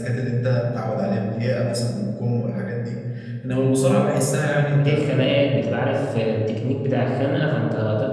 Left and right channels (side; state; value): both; identical; correlation 1.00